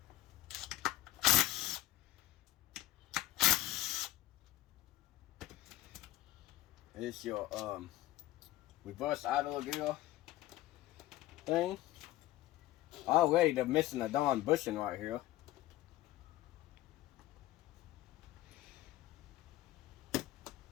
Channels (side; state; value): right; quieter; 15.9 dB